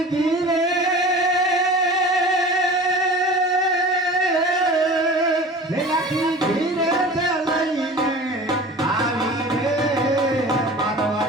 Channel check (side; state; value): both; normal; correlation 0.39